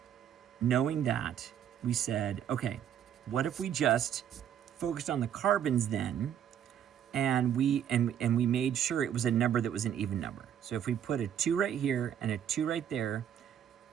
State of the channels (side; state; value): left; quieter; 9.5 dB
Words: knowing that, we said, okay, what if we just focused on the carbons then, and we made sure it was a number that was an even number. So if we put a 2 right here and a 2 right there,